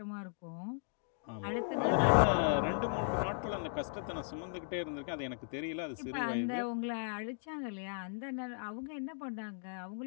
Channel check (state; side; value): silent; right; digital silence